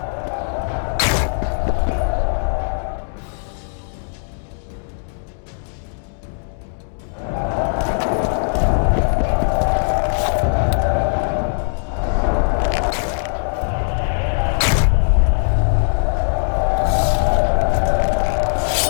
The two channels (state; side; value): silent; right; digital silence